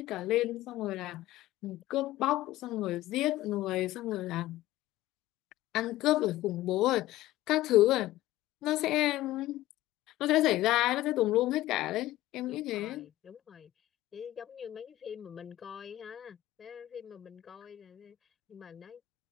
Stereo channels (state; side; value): quieter; right; 16.0 dB